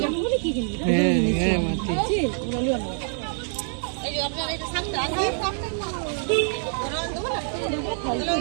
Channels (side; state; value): left; silent; 61 dB below the other